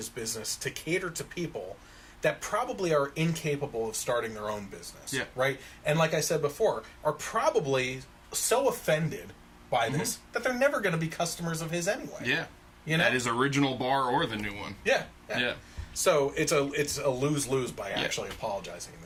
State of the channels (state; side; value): identical; both; correlation 1.00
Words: business to cater to people that probably are incapable of starting their own business, right? And like I said before, are probably so offended by this that they're never going to be customers of his anyway. Yeah. At his original bar or the new one. Yeah. So it's a lose-lose by Yeah. actually apologizing in